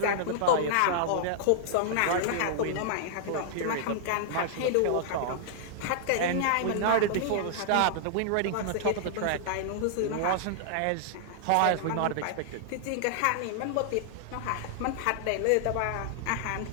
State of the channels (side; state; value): both; different; correlation -0.01